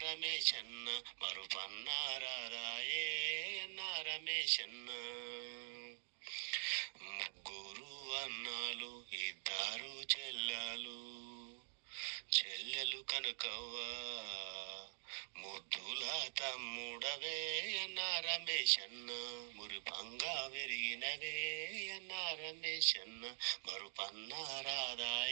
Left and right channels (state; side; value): silent; left; digital silence